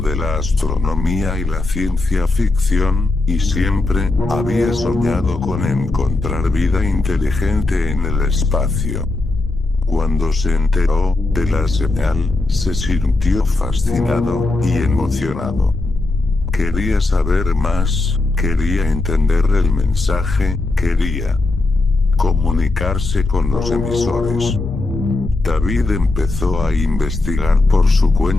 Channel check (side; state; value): right; quieter; 3.1 dB